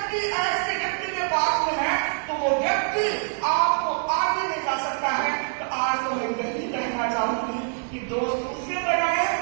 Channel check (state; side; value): silent; left; digital silence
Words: ऐसे व्यक्ति के पास में है तो वो व्यक्ति आपको आगे ले जा सकता है। तो आज तो मैं यही कहना चाहूंगी कि दोस्त उसे बनाए